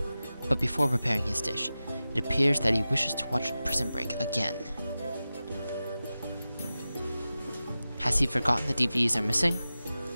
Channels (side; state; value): both; inverted; correlation -0.95